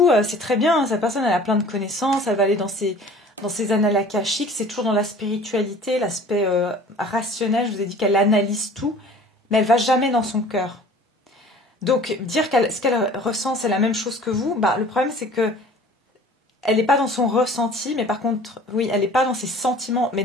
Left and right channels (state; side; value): normal; both; correlation 0.47